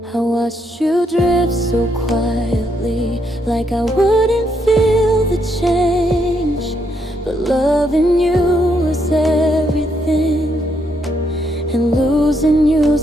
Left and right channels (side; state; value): both; normal; correlation 0.76